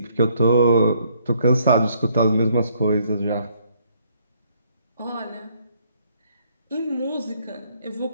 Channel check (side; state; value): both; inverted; correlation -0.67